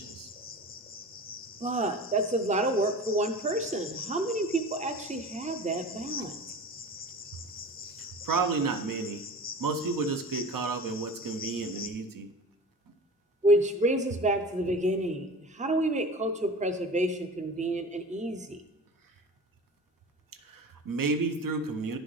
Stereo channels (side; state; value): both; normal; correlation 0.36